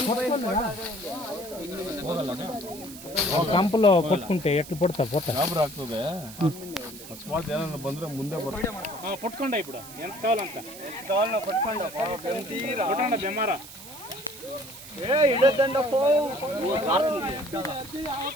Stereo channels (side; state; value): right; noise; hiss, 15 dB below the sound